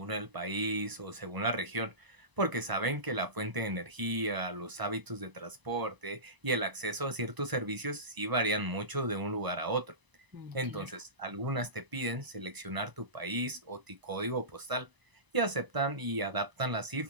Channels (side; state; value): left; late; 1.0 ms